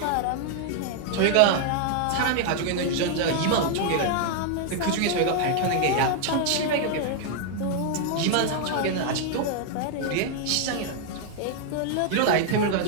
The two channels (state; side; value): different; both; correlation 0.00